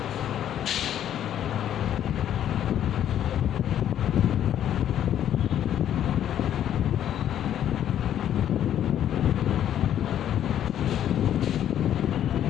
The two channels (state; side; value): quieter; right; 10.6 dB